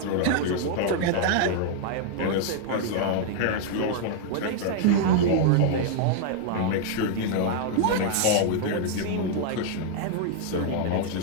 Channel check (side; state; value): both; different; correlation -0.01